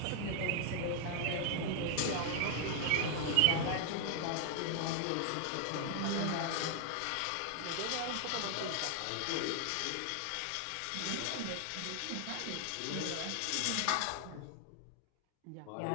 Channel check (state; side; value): different; both; correlation 0.00